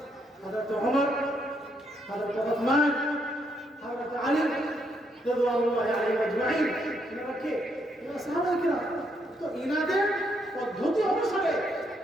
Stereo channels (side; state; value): both; normal; correlation 0.75